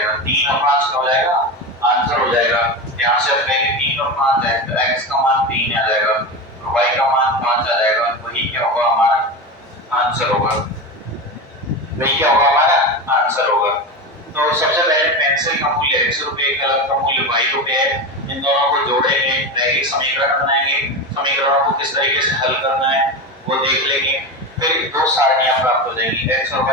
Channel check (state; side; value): normal; both; correlation 0.21